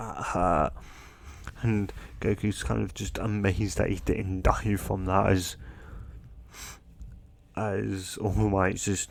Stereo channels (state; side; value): identical; both; correlation 1.00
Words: and Goku's kind of just amazed that he didn't die from that, as All Might's